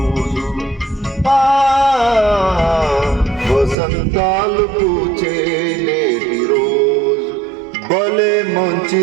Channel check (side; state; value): left; drops out; at 3.8 s